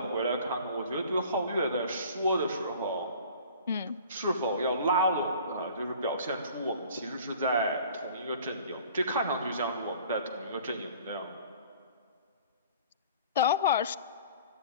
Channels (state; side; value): inverted; both; correlation -0.48